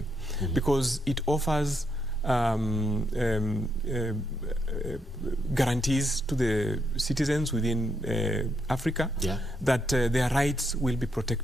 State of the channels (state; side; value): normal; both; correlation 0.79